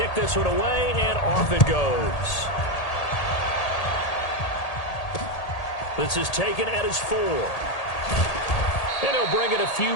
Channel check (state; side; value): late; right; 1.8 ms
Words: this one away, and off it goes. This is taken at his 4. And he'll bring it a few